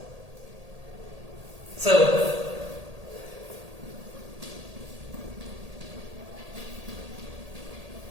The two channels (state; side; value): late; left; 1.8 ms